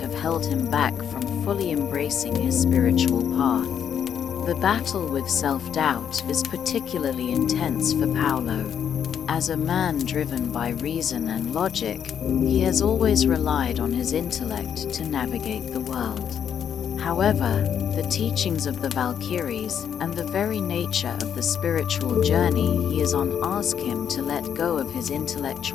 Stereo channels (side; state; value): right; quieter; 8.5 dB